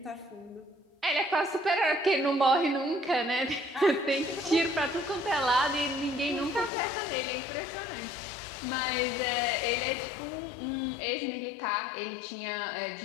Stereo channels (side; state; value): right; drops out; at 6.7 s